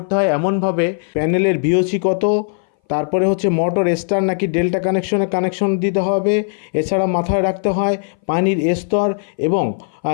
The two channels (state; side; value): silent; right; 61 dB below the other